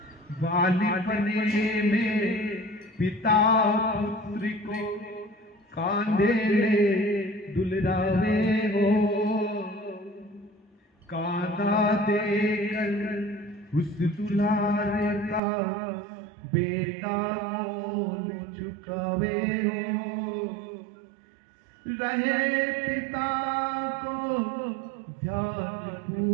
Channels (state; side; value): drops out; left; at 15.4 s